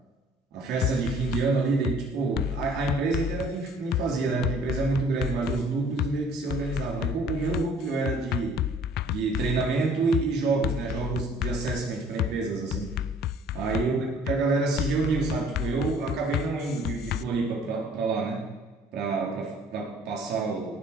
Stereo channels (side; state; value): both; normal; correlation 0.55